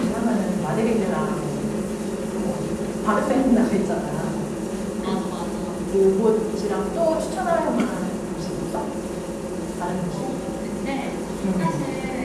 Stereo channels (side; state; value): both; identical; correlation 1.00